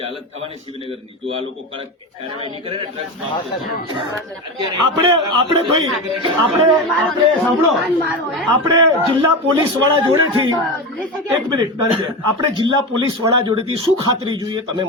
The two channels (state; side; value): normal; both; correlation 0.21